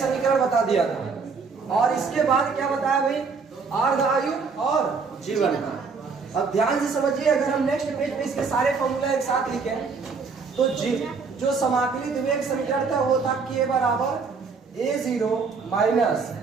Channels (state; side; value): quieter; left; 4.9 dB